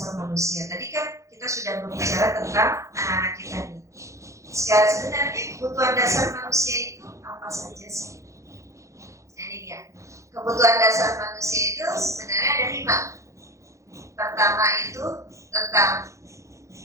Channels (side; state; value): left; late; 0.15 ms